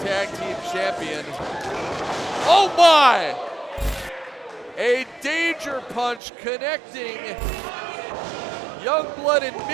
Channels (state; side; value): drops out; left; at 6.2 s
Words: tag team champion. Oh my! A danger punch connecting Youngblood in